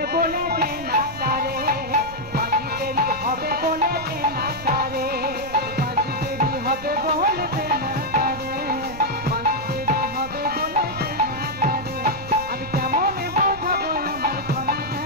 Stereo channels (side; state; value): right; noise; rumble, 14 dB below the sound